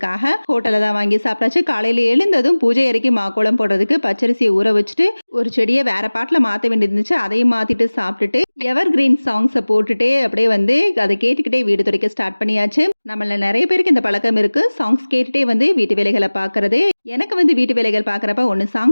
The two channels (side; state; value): both; inverted; correlation -1.00